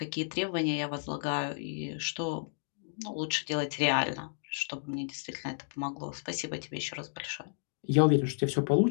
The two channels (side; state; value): right; silent; digital silence